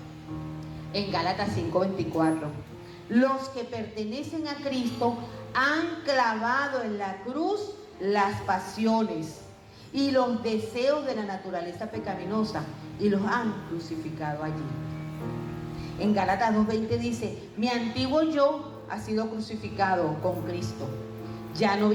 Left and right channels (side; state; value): both; identical; correlation 1.00